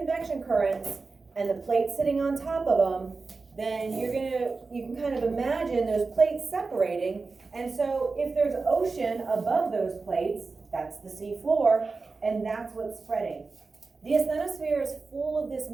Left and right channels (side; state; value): left; quieter; 4.1 dB